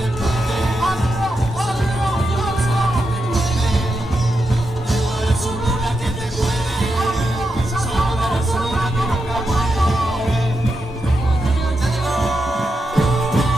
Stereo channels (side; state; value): both; normal; correlation 0.85